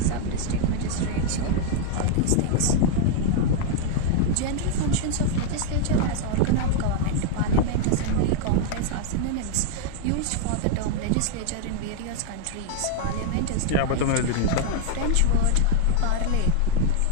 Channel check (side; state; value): both; different; correlation 0.00